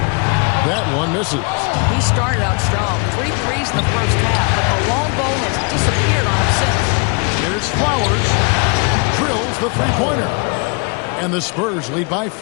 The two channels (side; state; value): right; quieter; 34.2 dB